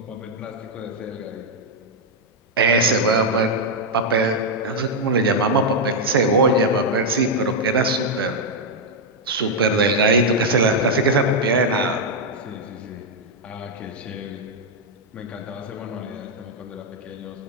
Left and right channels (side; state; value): both; normal; correlation -0.01